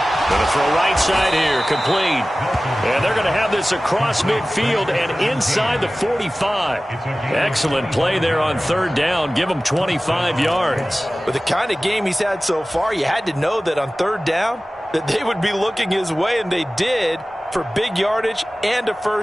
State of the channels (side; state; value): both; normal; correlation 0.97